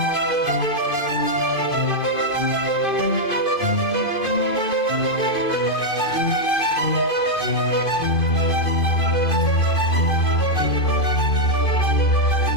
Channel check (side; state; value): right; late; 2.5 ms